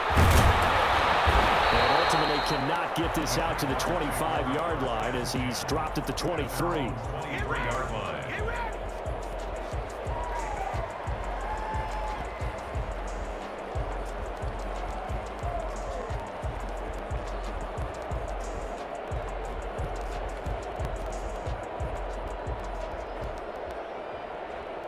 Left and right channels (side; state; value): both; identical; correlation 1.00